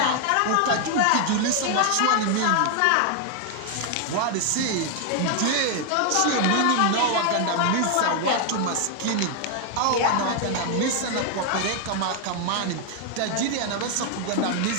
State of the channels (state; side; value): different; both; correlation 0.00